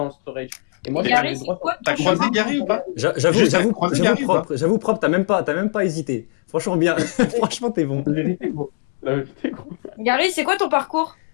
storage. Et moi, Gary, j'avais c'est droit. quoi T'as ton croisé chemin? Gary ou pas? J'avoue croisé Gary ou propre, t'as même pas hésité. Franchement bien, franchement t'es bon. La vérité, gros. La vérité, gros. Gary, c'est quoi ton parcours?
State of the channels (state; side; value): silent; right; digital silence